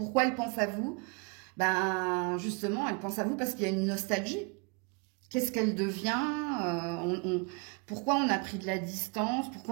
elle pense à vous? Ben, justement, elle pense à vous parce qu'il y a une nostalgie. Qu'est-ce qu'elle devient? Pourquoi on a pris de la distance?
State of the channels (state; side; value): quieter; left; 33.2 dB